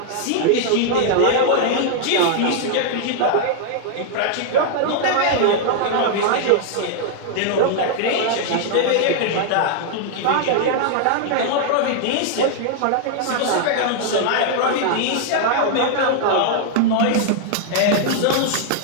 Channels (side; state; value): both; different; correlation 0.00